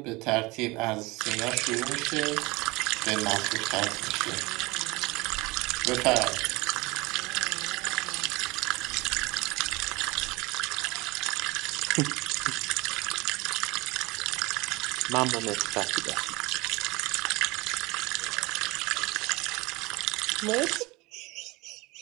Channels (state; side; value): quieter; left; 23.4 dB